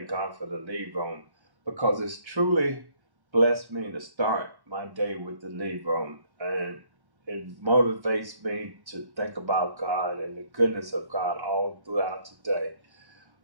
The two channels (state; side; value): late; left; 1.1 ms